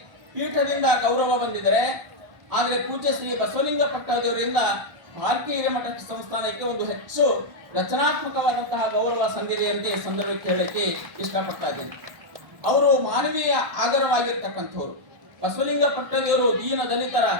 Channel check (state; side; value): late; left; 1.3 ms